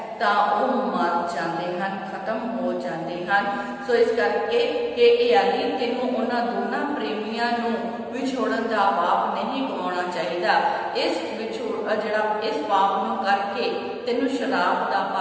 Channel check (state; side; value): identical; both; correlation 1.00